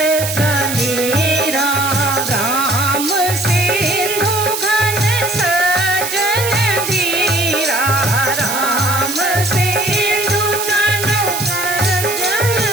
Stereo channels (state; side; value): noise; right; hiss, 4 dB below the sound